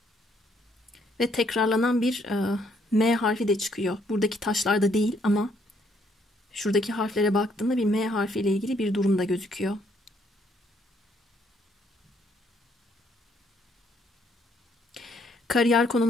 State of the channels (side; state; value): both; normal; correlation 0.69